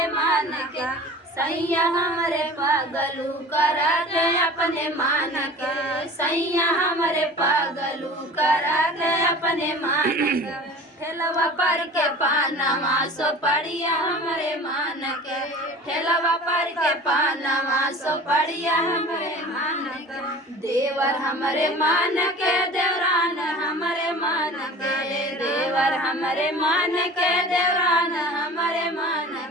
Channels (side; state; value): both; normal; correlation 0.41